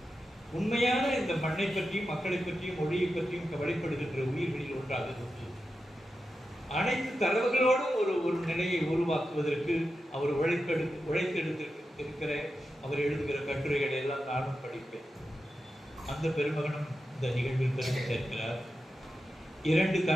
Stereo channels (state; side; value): normal; both; correlation 0.90